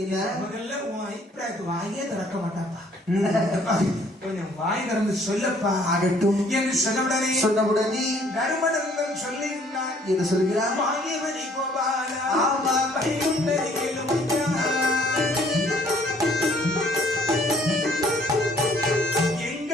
என்ன முதல்ல உன் அபிப்பிராயத்தை வாயே திறக்க மாட்டாப்பா. கொஞ்சம் வாய் திறந்து சொல்லப்பா. ஆகட்டும் என்று சொன்னவுடனே தர்மநந்தன் சொல்லுகிறார். என்று சொல்கிறார். வாங்கியவனை கோபாலா ஆமா பைகுண்டரை கேளுமையா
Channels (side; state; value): both; normal; correlation 0.60